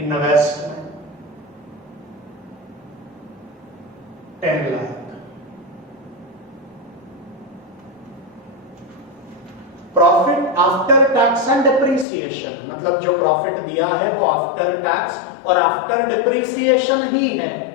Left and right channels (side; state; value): right; drops out; at 12.1 s